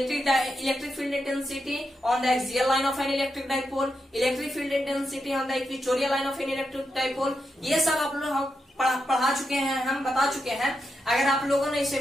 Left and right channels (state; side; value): normal; both; correlation 0.86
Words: field intensity on the axial line of N electric dipole, electric field intensity on the equatorial line of N electric dipole. ये सब आप लोग पढ़ा चुके हैं, हम बता चुके हैं। अगर आप लोगों ने इसे